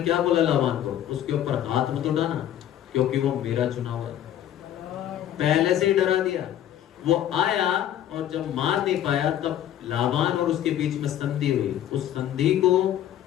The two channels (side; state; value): right; quieter; 11.3 dB